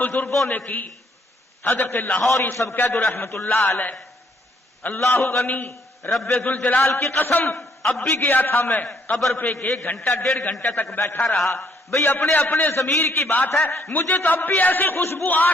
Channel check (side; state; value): both; normal; correlation 0.67